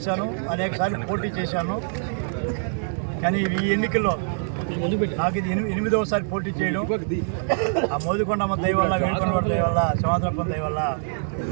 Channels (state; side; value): silent; left; digital silence